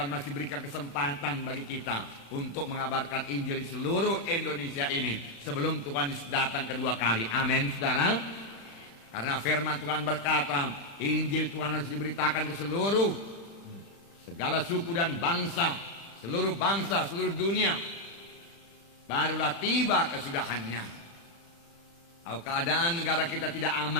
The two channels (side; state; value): right; late; 35 ms